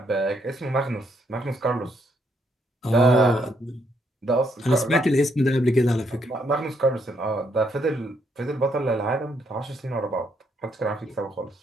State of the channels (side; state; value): both; normal; correlation 0.74